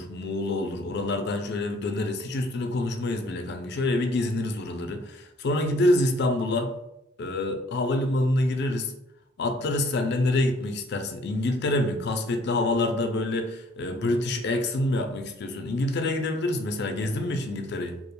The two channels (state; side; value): normal; both; correlation 0.59